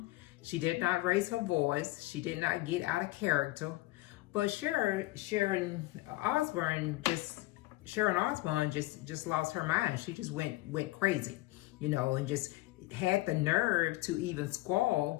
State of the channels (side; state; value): right; quieter; 19.0 dB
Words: She did not raise her voice. She did not get out of character. But Sharon Osbourne just lost her mind. She just went crazy, you know, and just had the nerve to even